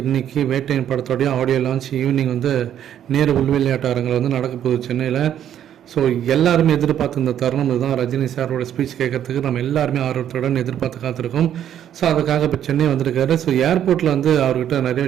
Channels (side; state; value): left; quieter; 10.3 dB